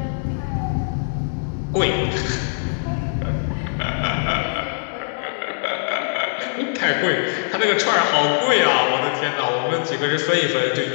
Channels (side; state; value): right; silent; digital silence